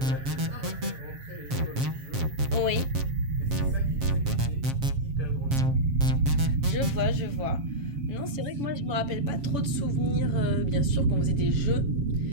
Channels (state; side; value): late; left; 7.5 ms